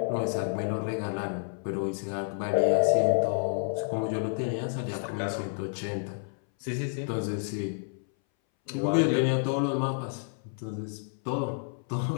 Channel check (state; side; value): silent; right; 58 dB below the other